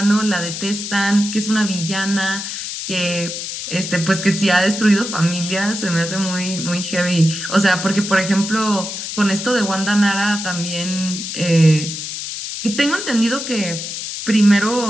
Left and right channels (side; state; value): left; noise; hiss, 6 dB below the sound